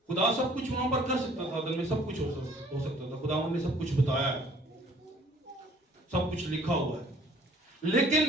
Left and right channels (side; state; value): both; normal; correlation 0.56